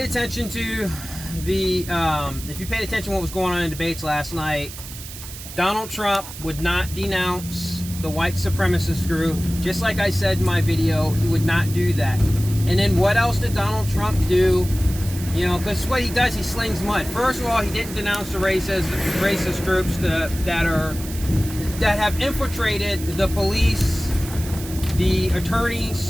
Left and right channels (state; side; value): noise; right; hiss, 13 dB below the sound